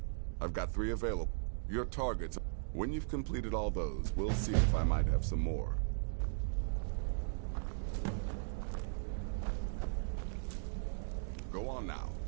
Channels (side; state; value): left; silent; digital silence